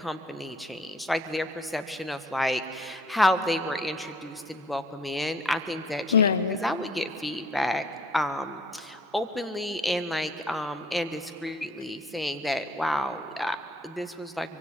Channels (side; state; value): both; normal; correlation 0.54